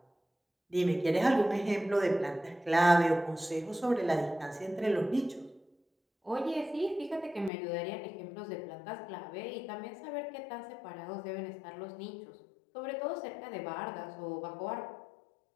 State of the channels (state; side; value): drops out; right; at 7.5 s